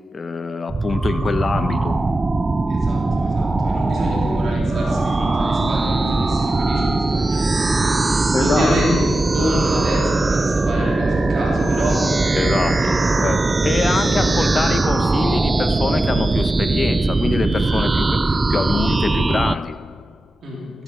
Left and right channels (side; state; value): both; normal; correlation 0.92